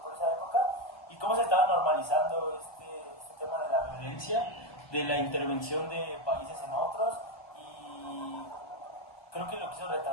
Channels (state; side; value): late; right; 1.2 ms